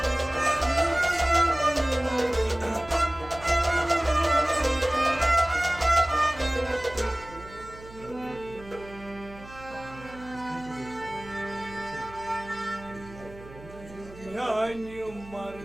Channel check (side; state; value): right; noise; hum, 18 dB below the sound